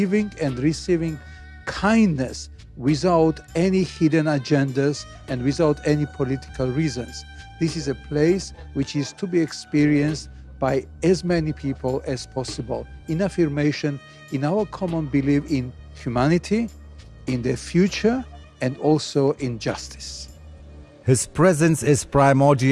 and receiving kindness without any hidden agendas and without any political reasons. This is a place which is to be experienced by as many people as possible in affirmation, in our common belief in humanity, in the future, and also in justice. His presence is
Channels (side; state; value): both; identical; correlation 1.00